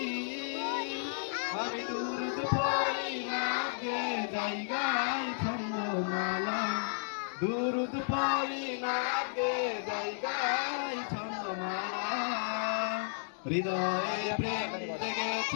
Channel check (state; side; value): silent; right; digital silence